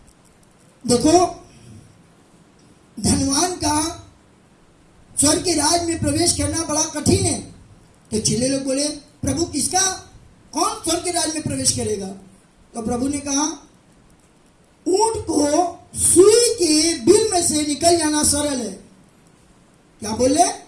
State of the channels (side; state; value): both; identical; correlation 1.00